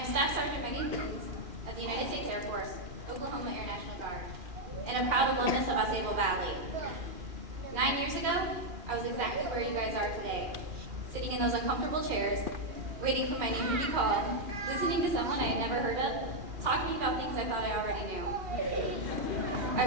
Staff Sergeant Megan Coons of the United States Air Force, Oklahoma Air National Guard, and a proud alumnus of AuSable Valley. 9 years ago, I was exactly where you guys are today, sitting in those uncomfortable chairs, waiting for my name to be called, listening to someone I had never heard of, talking about things I thought I already knew. I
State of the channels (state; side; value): late; left; 2.4 ms